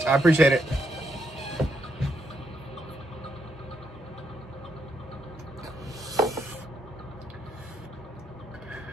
I appreciate it.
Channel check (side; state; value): both; normal; correlation 0.78